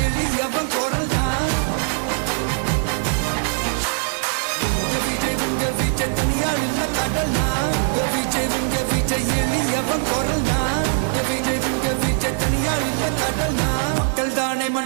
எளியவன் குரல்னா விஜய் உங்க விஜய் தனியாள் இல்ல கடல்னா விஜய் உங்க விஜய் எளியவன் குரல்னா விஜய் உங்க விஜய் தனியாள் இல்ல கடல்னா மக்கள் தானே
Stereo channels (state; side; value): silent; left; digital silence